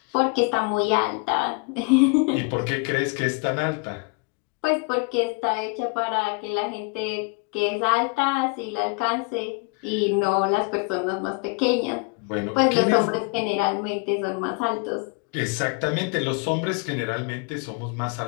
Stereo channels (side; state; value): right; quieter; 30.9 dB